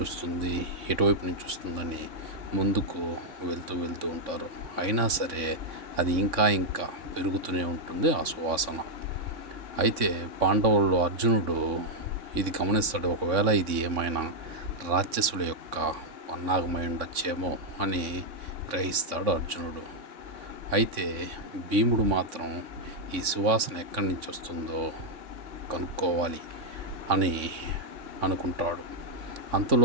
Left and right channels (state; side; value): late; left; 3.6 ms